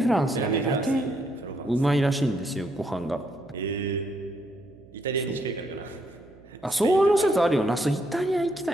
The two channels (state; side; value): noise; right; hum, 24 dB below the sound